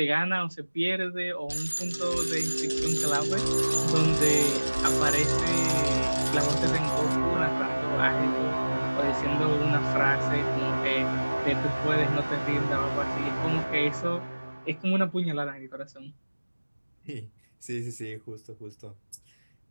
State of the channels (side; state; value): both; inverted; correlation -1.00